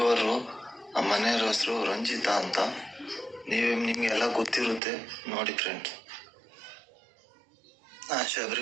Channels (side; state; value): left; drops out; at 4.8 s